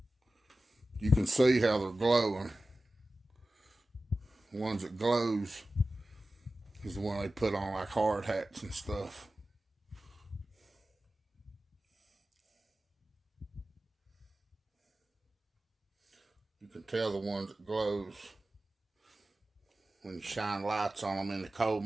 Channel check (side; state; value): both; normal; correlation 0.95